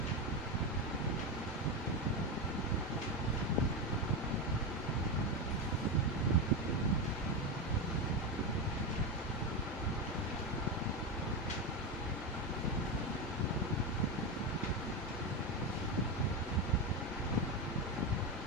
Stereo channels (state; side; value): normal; both; correlation 0.12